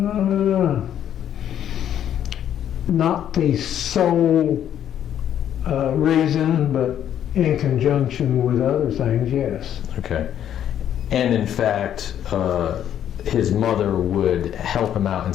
Not the sole reason, but in conjunction with other things, yes. Okay. And in fact, his mother would help him out and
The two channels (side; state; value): right; quieter; 10.2 dB